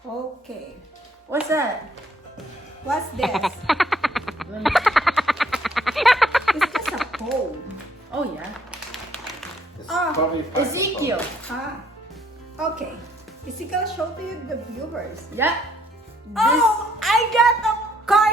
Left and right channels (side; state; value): both; normal; correlation 0.66